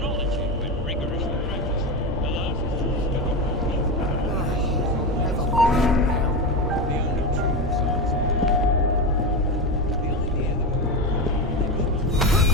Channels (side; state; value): both; normal; correlation 0.17